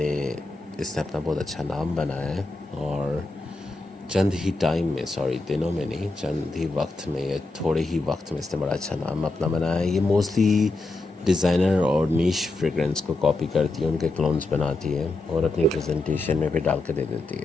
اس نے اپنا بہت اچھا نام بنایا ہے، اور چند ہی ٹائم میں، سوری دنوں میں نہیں، چند ہی وقت میں یا تھوڑے ہی وقت میں اس نے بڑا اچھا نام اپنا بنایا ہے. یہ موسٹلی ڈیزائنر اور نیش فریگرنس کو کاپی کرتی ہے، ان کے کلونز بناتی ہے اور اپنی پریزنٹیشن میں بھی ڈال کے دے دیتی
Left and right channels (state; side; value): quieter; right; 3.1 dB